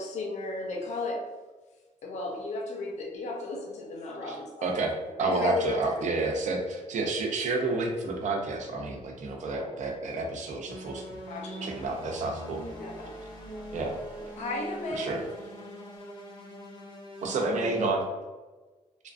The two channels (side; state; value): both; normal; correlation 0.42